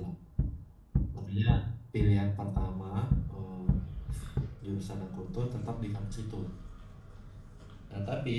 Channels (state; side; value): identical; both; correlation 1.00